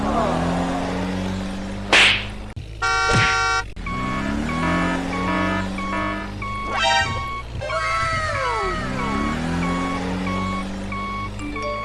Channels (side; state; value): both; identical; correlation 1.00